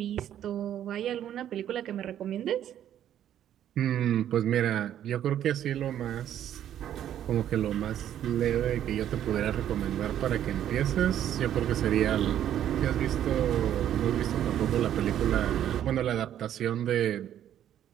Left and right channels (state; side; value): quieter; left; 10.8 dB